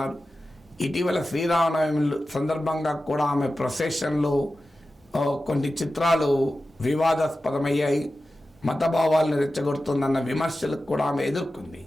ఇటీవల శ్రీరామనవమి సందర్భంగా కూడా ఆమె ప్రొసెషన్లో కొన్ని చిత్రాలు వివాదాస్పదమయ్యాయి, మతభావాలను రెచ్చగొడుతుందన్న విమర్శలకు కూడా ఆమె ఎదుర్కొంది.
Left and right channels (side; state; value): both; normal; correlation 0.94